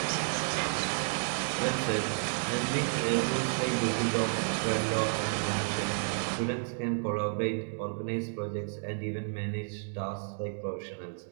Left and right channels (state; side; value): silent; left; digital silence